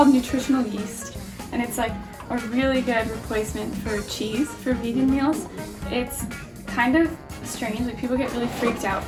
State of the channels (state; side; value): identical; both; correlation 1.00